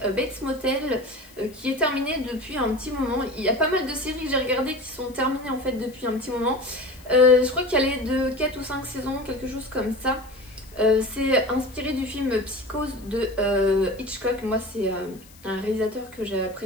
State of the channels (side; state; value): left; noise; hiss, 24 dB below the sound